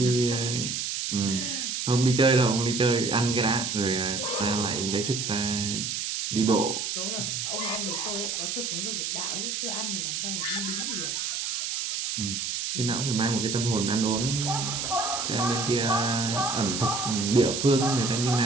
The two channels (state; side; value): noise; right; hiss, 2 dB below the sound